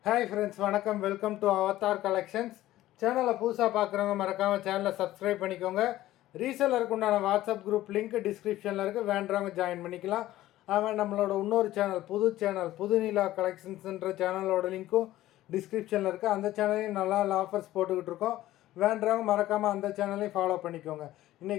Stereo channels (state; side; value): quieter; right; 15.1 dB